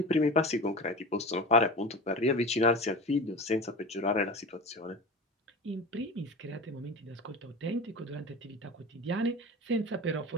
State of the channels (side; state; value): both; normal; correlation 0.31